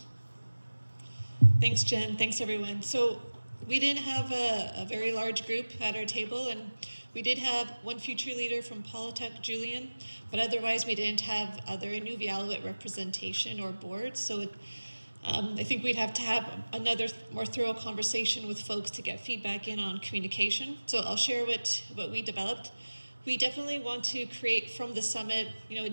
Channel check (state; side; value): inverted; both; correlation -1.00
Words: Thanks, Jen. Thanks, everyone. So we didn't have a very large group at our table, and we did have one future leader from Paulatuk, Julian, but otherwise we didn't have other Inuvialuit representation or board. So I think we'd have to have another more thorough conversation with folks to get feedback in on communication. So I'll share what we developed. We definitely want to create from the summit, a